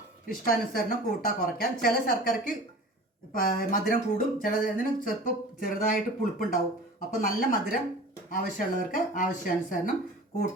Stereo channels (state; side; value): normal; both; correlation 0.40